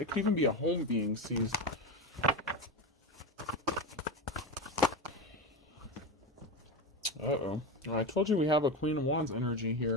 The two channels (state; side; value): normal; both; correlation 0.19